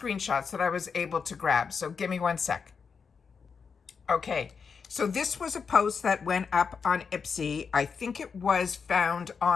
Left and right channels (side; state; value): right; quieter; 5.8 dB